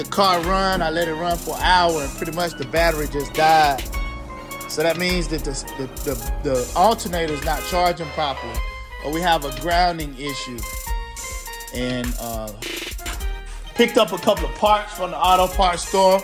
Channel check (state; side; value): identical; both; correlation 1.00